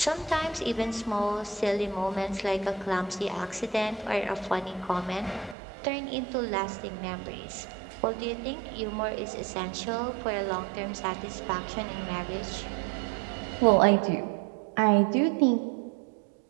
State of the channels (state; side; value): drops out; left; at 5.6 s